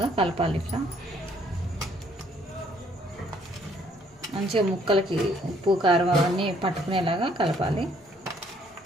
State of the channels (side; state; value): both; normal; correlation 0.64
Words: కలపాలి. ఇట్లా మంచిగా ముక్కలకి ఉప్పు కారం అవన్నీ పట్టుకునేలాగా కలపాలి.